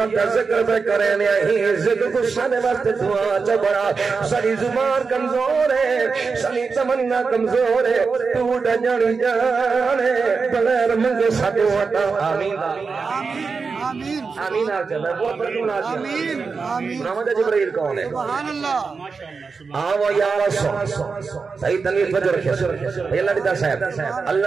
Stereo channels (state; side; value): quieter; left; 4.9 dB